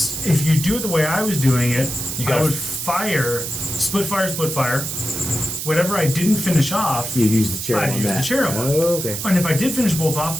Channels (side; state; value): right; noise; hiss, 5 dB below the sound